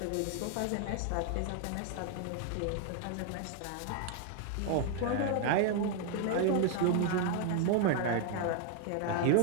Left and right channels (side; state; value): both; different; correlation 0.00